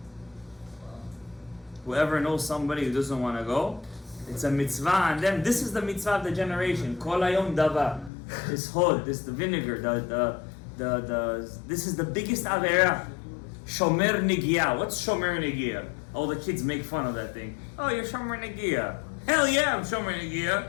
Whoever knows somebody who doesn't want to go, it's a mitzvah on them. This is the mitzvah of the generation. Kol hayom dava. This hod, this the vinegar, this is the biggest avera. Shomer negia. What's shomer negia? All the kids make fun of that thing. Oh, you're shomer negia. Hell yeah, I'm shomer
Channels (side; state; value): right; drops out; at 8.1 s